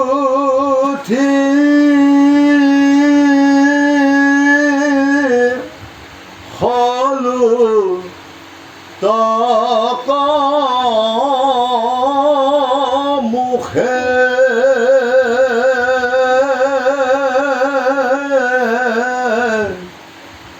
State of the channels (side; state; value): both; identical; correlation 1.00